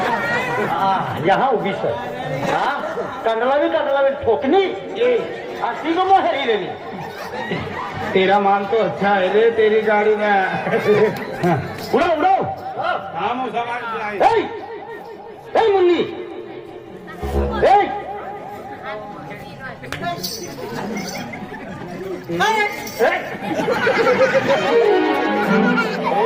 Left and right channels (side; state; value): both; identical; correlation 1.00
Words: यहाँ उभी सर कंडला भी ठोकनी अस्सी को मोहरी देनी तेरा माल तो अच्छा है रे तेरी गाड़ी में उड़ो उड़ो हम मुन्नी